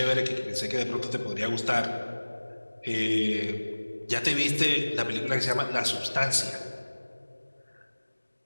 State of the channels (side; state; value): both; inverted; correlation -1.00